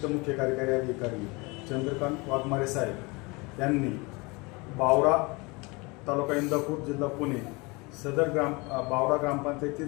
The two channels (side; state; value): right; quieter; 26.5 dB